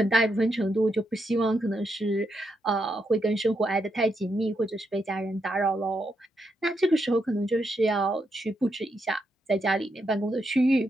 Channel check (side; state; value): both; normal; correlation 0.81